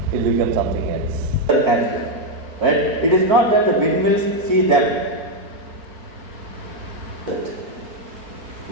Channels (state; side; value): late; left; 4.5 ms